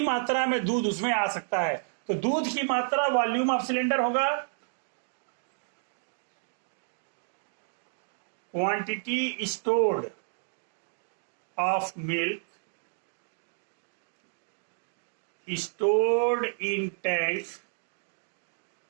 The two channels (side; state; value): left; silent; digital silence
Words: मात्रा में दूध उसमें आ सकता है? तो दूध की मात्रा वॉल्यूम ऑफ सिलेंडर होगा, quantity stored of milk stored in tank